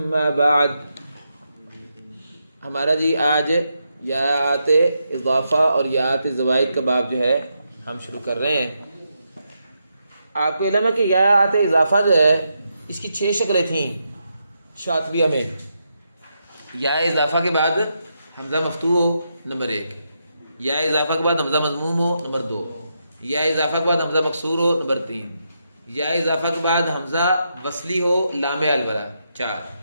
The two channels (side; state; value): both; inverted; correlation -0.83